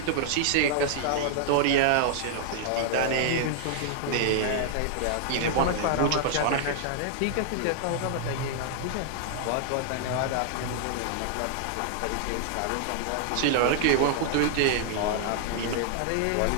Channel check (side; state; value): both; different; correlation -0.01